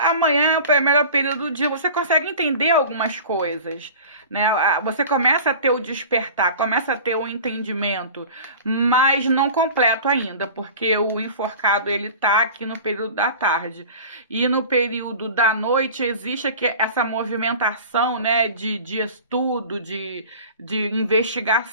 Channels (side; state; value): both; inverted; correlation -0.39